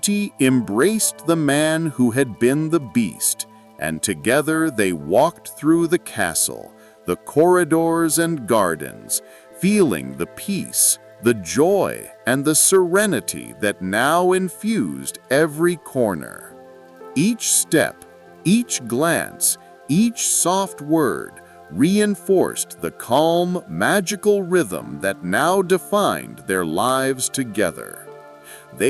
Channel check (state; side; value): identical; both; correlation 1.00